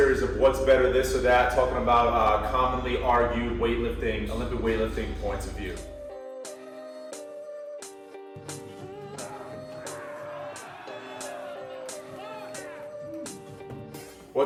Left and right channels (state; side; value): identical; both; correlation 1.00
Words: of what's better, this or that, talking about commonly argued weightlifting, Olympic weightlifting points of view.